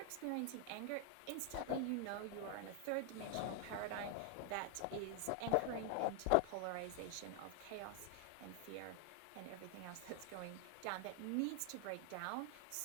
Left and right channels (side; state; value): both; different; correlation 0.00